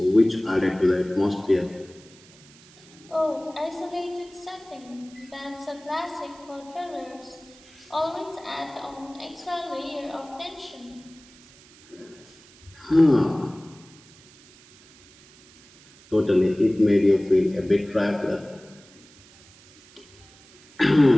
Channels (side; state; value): right; noise; hiss, 25 dB below the sound